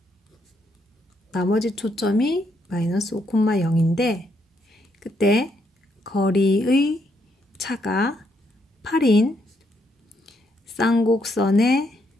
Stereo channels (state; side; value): normal; both; correlation 0.75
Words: 나머지 초점이 마이너스 5,0인데 그때 거리의 차가 8인 쌍곡선의